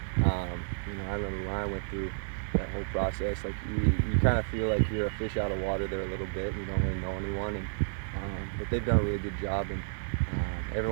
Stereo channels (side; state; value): left; silent; digital silence